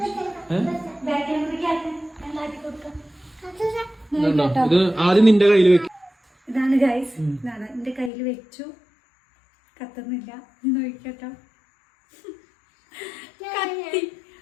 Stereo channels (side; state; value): right; drops out; at 8.1 s